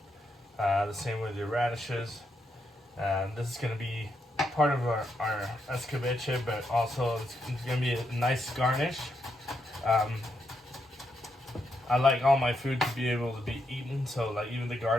The same with your radishes. This is gonna be part of our escabeche, but also it's gonna be a nice garnish. I like all my food to be able to be eaten, so like even the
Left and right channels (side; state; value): both; normal; correlation 0.81